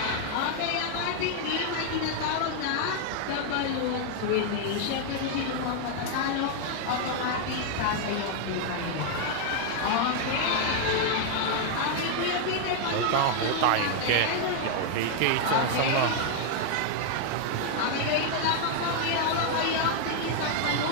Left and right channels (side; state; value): both; different; correlation 0.00